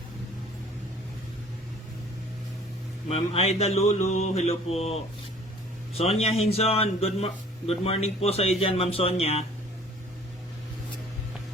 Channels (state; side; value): normal; both; correlation 0.51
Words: Ma'am Aida Lulu, hello po. Sonia Hinson, good morning po sa iyo dyan, Ma'am Sonia.